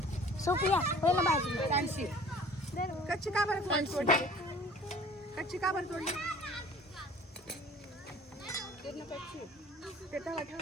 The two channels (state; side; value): normal; both; correlation 0.48